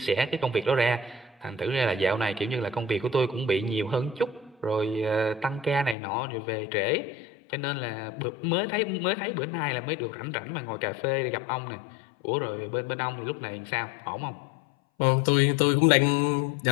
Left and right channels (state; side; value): drops out; right; at 6.0 s